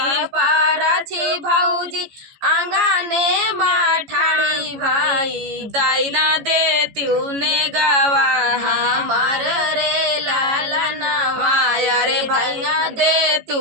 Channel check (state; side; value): late; left; 15 ms